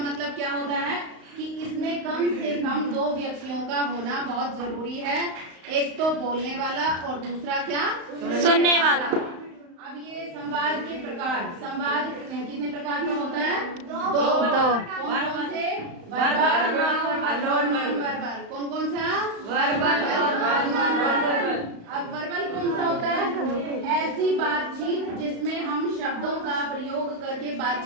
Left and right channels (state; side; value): late; left; 35 ms